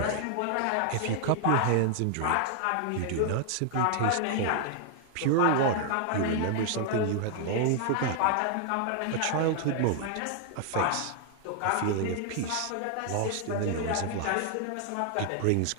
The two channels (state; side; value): different; both; correlation 0.00